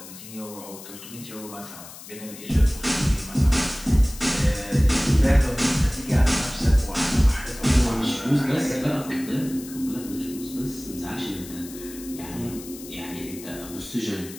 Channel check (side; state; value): left; noise; hiss, 15 dB below the sound